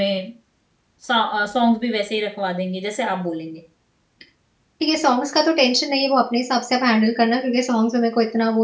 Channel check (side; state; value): both; identical; correlation 1.00